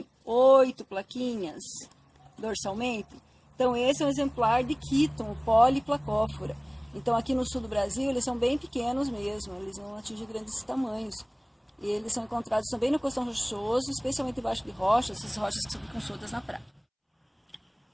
8 plaquinhas dorsalmente? Então, esse é um exemplar de Quíton, poliplacófora. Então, aqui no sul do Brasil, eles são bem pequenos mesmo, eles não atingem grandes tamanhos. E eles são encontrados também no costão rochoso, especialmente embaixo de rochas, essas rochas que ficam soltas na praia.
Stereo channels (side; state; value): both; identical; correlation 1.00